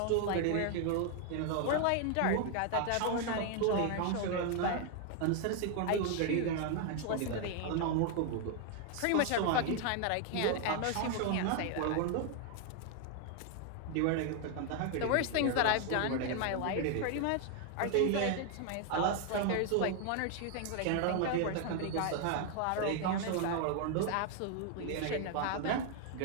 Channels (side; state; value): both; different; correlation 0.00